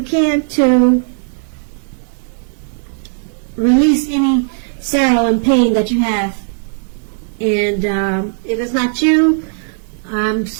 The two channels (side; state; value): left; silent; digital silence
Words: can to release any sorrow and pain that you have. And if it's not you, I'm